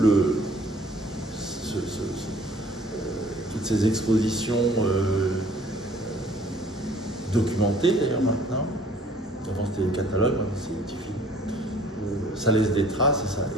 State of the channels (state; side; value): normal; both; correlation 0.56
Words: ces expositions documentées d'ailleurs maintenant, avant c'était des catalogues, maintenant c'est des petits films, ça laisse des traces et